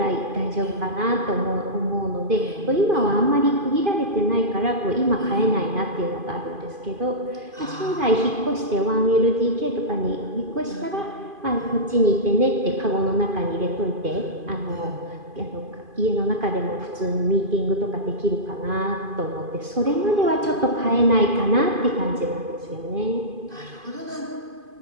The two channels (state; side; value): late; left; 2.5 ms